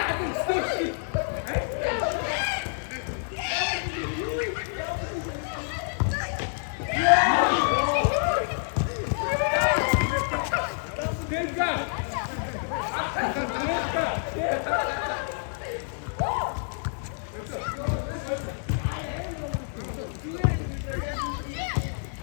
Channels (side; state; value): right; silent; 57 dB below the other